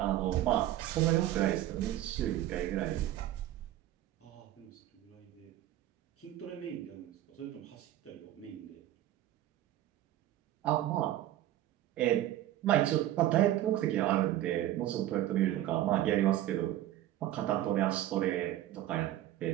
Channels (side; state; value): left; quieter; 13.5 dB